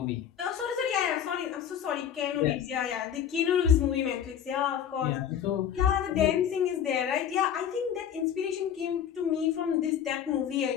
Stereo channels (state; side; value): quieter; right; 8.9 dB